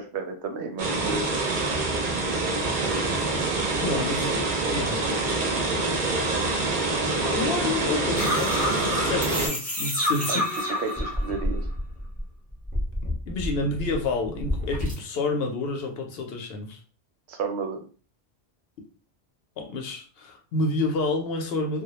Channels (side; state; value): both; normal; correlation 0.14